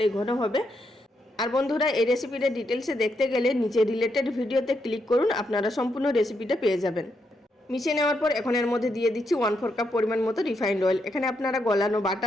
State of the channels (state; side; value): normal; both; correlation 0.80